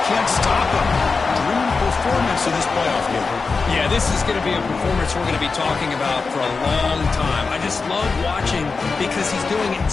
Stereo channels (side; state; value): right; quieter; 4.5 dB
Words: can't stop him. Dream performance in this playoff game. Yeah, this is going to be a performance we're going to be talking about for a long time. I just love watching because he's doing it in